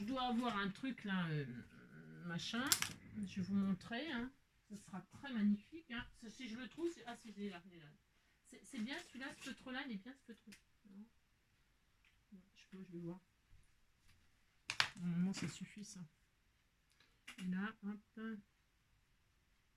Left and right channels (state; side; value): identical; both; correlation 1.00